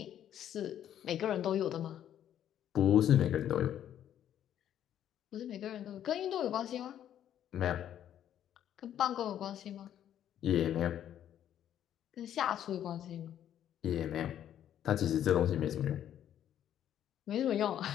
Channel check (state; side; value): quieter; right; 10.6 dB